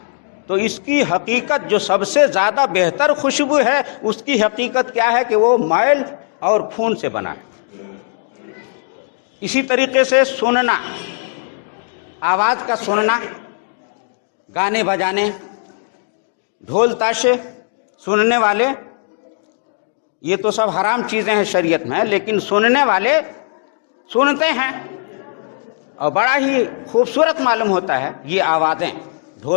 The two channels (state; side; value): silent; right; digital silence